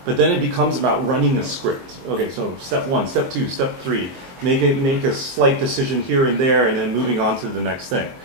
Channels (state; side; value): late; left; 23 ms